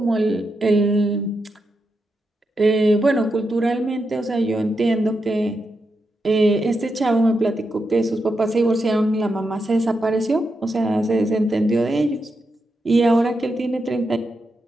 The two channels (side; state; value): both; normal; correlation 0.86